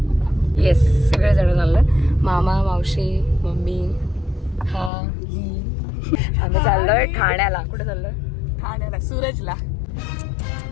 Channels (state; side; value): drops out; right; at 4.9 s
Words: येस, सगळे जण चाललोय. मामा, मावशी, मम्मी, हा, आम्ही चाललोय ठाण्याला. कुठे चाललोय? ठाण्याला, सूरजला.